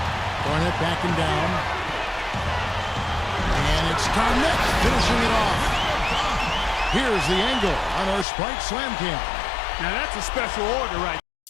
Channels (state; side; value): drops out; right; at 8.2 s